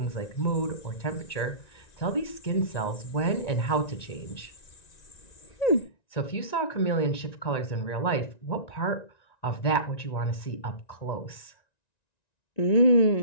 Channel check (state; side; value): late; right; 1.9 ms